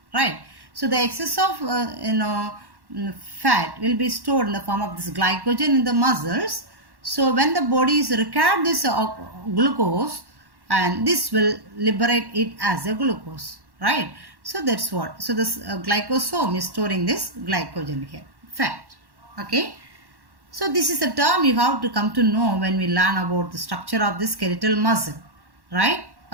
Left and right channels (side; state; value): left; late; 1.1 ms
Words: right? So the excess of fat will be stored in the form of this glycogen in the muscles. So when the body is required this glucose, and this will liberate it as a glucose, right? So that's what. So this glycosome is storing this glycogen here, fat. Okay. So this is a term you have to come to know when we learn about the structure of the skeletal muscle. Right?